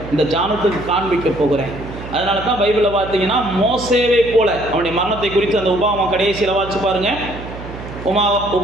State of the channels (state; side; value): noise; right; hum, 12 dB below the sound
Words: இந்த ஜானத்துக்கு காண்பிக்க போகிறேன். அதனால தான் பைபிளில் பார்த்தீங்கன்னா மோசேவை போல அவனுடைய மரணத்தை குறித்து அந்த உபாகமம் கடைசியில் வாசிச்சு பாருங்க.